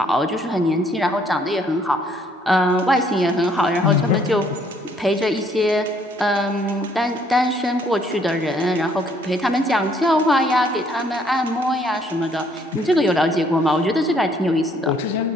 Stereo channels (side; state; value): both; normal; correlation 0.65